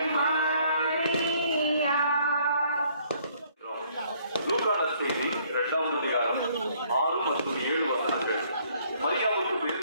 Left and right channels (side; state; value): both; inverted; correlation -0.64